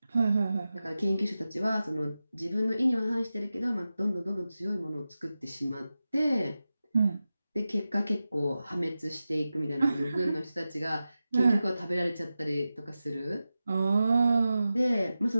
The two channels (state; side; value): inverted; both; correlation -0.94